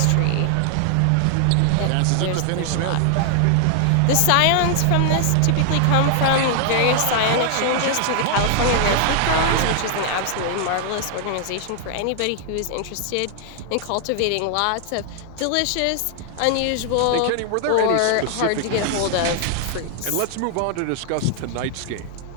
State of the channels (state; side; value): different; both; correlation 0.00